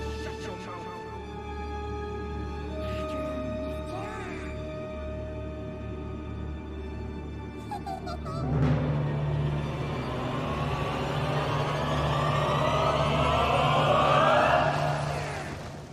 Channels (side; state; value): both; identical; correlation 1.00